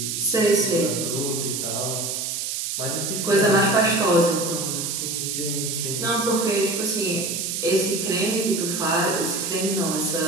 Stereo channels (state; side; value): noise; right; hiss, 3 dB below the sound